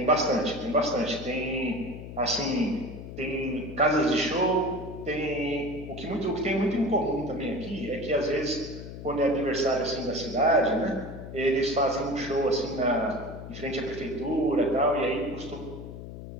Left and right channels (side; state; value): left; noise; hum, 11 dB below the sound